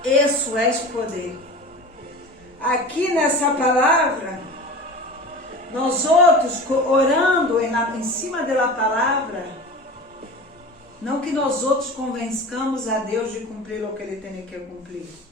Isso é poder. Aqui nessa palavra, nós outros orando em cima da palavra, não que nós outros convençamos a Deus de cumprir o que Ele tem que cumprir,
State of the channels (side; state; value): both; normal; correlation 0.34